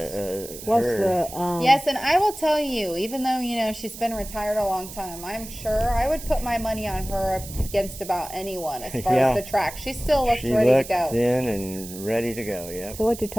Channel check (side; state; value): right; noise; hiss, 13 dB below the sound